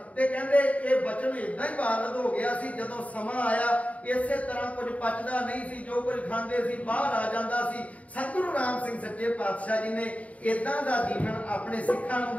ते कहंदे ये वचन इदां ही वारद हो गया सी। जदों समा आया इसे तरह कुछ पचदा नहीं सी, जो कुछ खांदे सी बाहर आ जांदा सी। सतगुरु राम सिंह सच्चे पातशाह जी ने इदां दा जीवन अपने सिखां नूं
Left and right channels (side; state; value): right; late; 0.068 ms